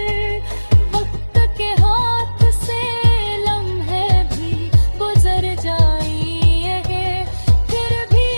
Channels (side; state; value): both; inverted; correlation -1.00